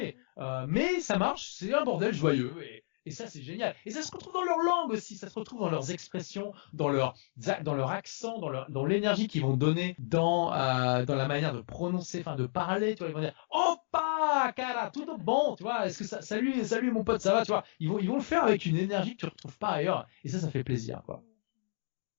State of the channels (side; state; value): right; silent; digital silence